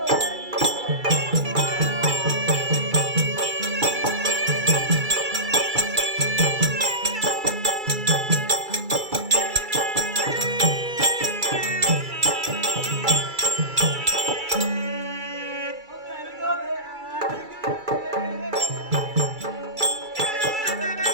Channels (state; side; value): late; left; 2.3 ms